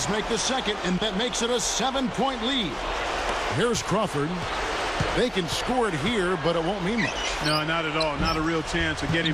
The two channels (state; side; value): identical; both; correlation 1.00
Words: make the second, and that makes it a 7-point lead. Here's Crawford. They can score it here, but it won't mean much. No, not at all. Not a real chance of